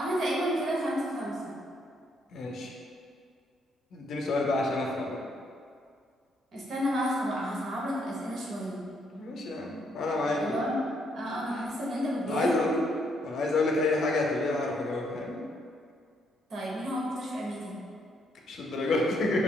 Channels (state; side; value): normal; both; correlation 0.73